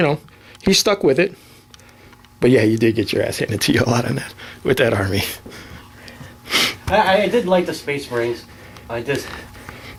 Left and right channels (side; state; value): both; identical; correlation 1.00